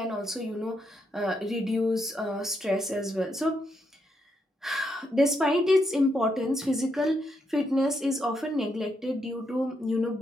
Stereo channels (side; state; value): both; normal; correlation 0.79